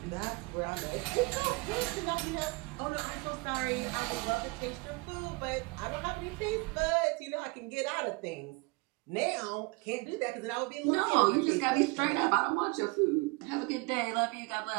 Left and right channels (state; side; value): quieter; left; 27.0 dB